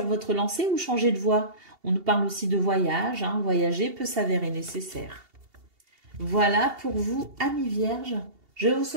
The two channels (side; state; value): left; late; 2.8 ms